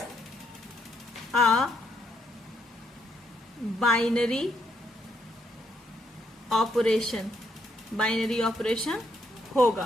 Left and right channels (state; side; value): normal; both; correlation 0.75